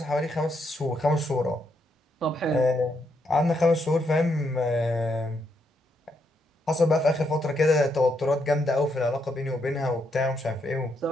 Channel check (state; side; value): normal; both; correlation 0.77